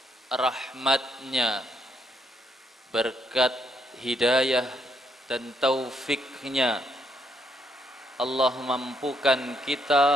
rahmatnya, berkat hidayah dan taufiknya, Allah mampukan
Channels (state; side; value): normal; both; correlation 0.74